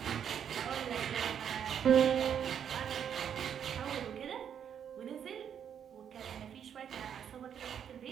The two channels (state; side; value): quieter; left; 8.5 dB